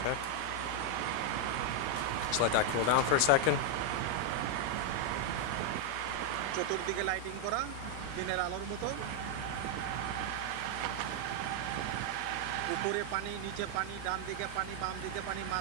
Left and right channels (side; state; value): both; different; correlation 0.00